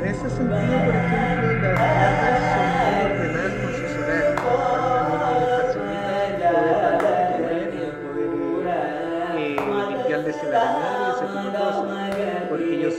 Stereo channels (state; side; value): identical; both; correlation 1.00